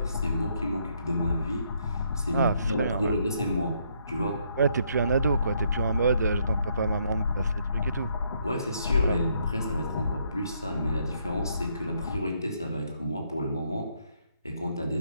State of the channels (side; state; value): both; inverted; correlation -0.72